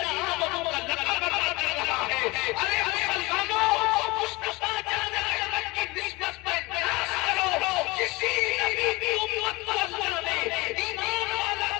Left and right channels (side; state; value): right; quieter; 23.2 dB